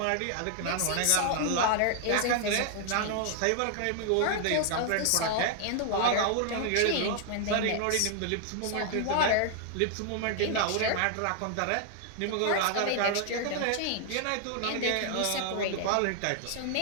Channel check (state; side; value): different; both; correlation 0.00